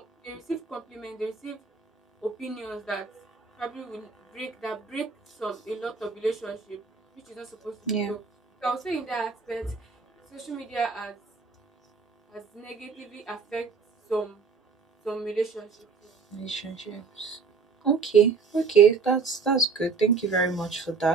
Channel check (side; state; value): left; quieter; 5.1 dB